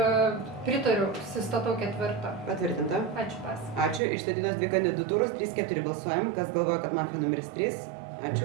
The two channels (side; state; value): left; drops out; at 4.0 s